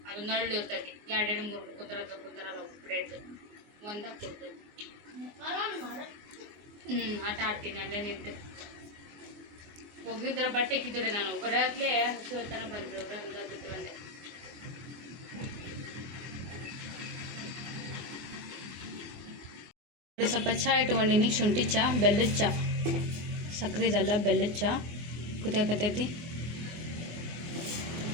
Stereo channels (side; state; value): left; late; 24 ms